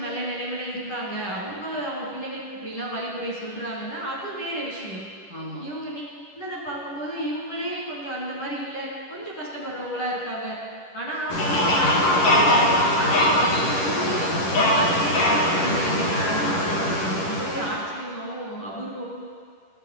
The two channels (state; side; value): late; right; 10 ms